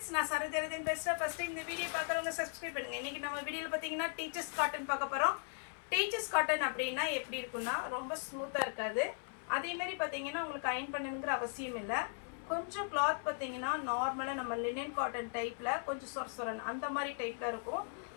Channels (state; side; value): silent; right; 52 dB below the other